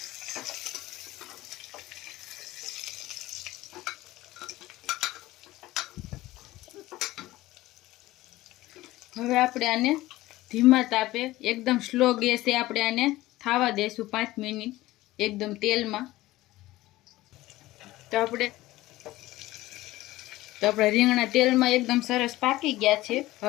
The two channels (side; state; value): right; quieter; 17.4 dB